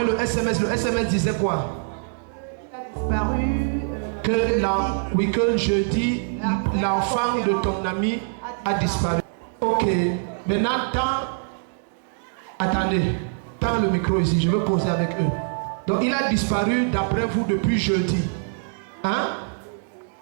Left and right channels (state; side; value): silent; left; digital silence